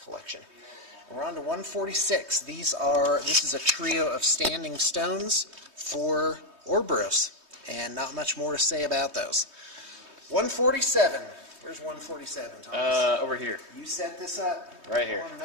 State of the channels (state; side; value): late; left; 3.2 ms